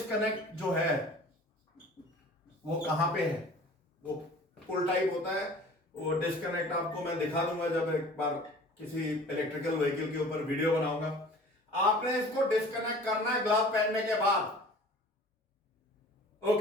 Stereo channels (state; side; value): normal; both; correlation 0.45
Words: जो है वो कहां पे है। वो पुल टाइप होता है, वो डिस्कनेक्ट आपको मैं दिखा दूंगा जब एक बार किसी इलेक्ट्रिकल व्हीकल के ऊपर वीडियो बनाऊंगा। आपने इसको डिस्कनेक्ट करना है ग्लव पहनने के बाद।